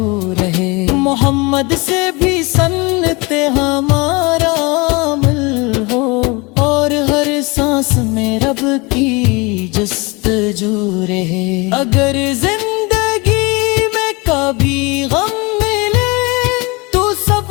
رہے محمد سے بھی سنت ہمارا عمل ہو اور ہر سانس میں رب کی جستجو رہے اگر زندگی میں کبھی غم ملے تو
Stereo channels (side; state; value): right; quieter; 26.4 dB